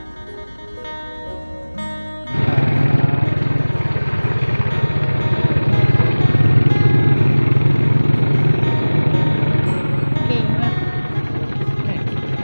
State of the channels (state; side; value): inverted; both; correlation -1.00